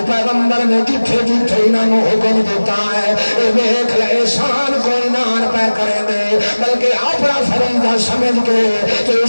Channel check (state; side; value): inverted; both; correlation -1.00